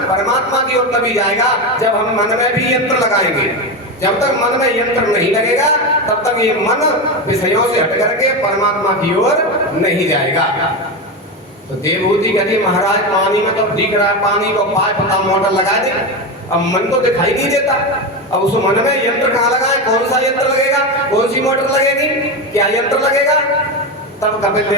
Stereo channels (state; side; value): normal; both; correlation 0.16